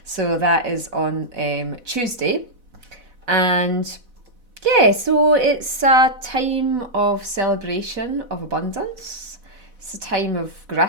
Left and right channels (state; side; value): late; left; 4.1 ms